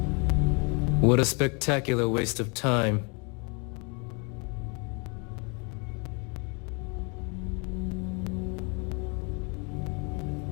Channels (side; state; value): right; quieter; 33.7 dB